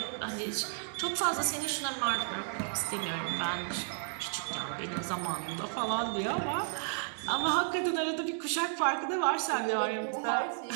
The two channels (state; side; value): silent; left; digital silence